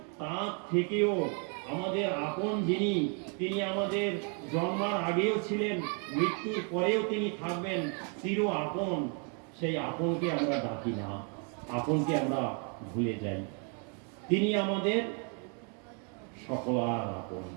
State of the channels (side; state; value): left; quieter; 39.1 dB